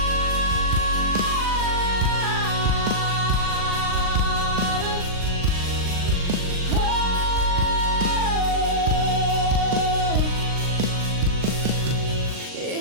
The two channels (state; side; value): late; left; 39 ms